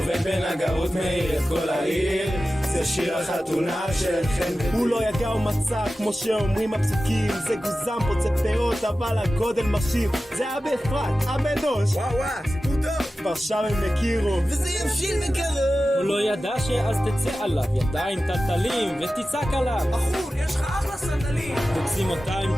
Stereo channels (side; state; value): both; normal; correlation 0.94